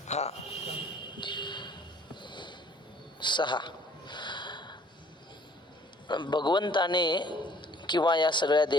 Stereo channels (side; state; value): both; normal; correlation 0.57